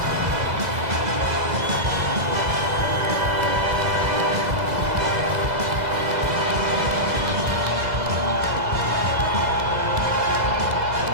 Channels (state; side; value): late; left; 2.0 ms